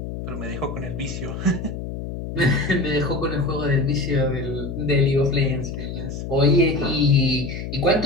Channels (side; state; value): left; noise; hum, 7 dB below the sound